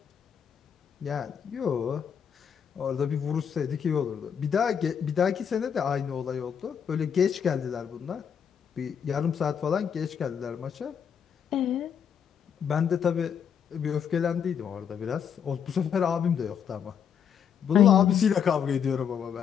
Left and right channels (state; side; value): quieter; right; 7.8 dB